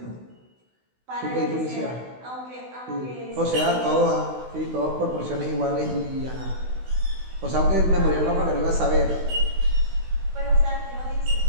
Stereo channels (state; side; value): late; left; 16 ms